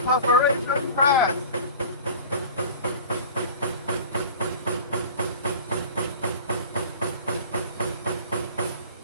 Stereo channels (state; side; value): inverted; both; correlation -0.40